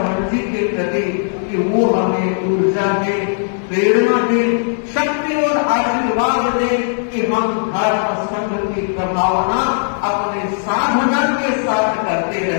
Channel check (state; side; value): silent; right; digital silence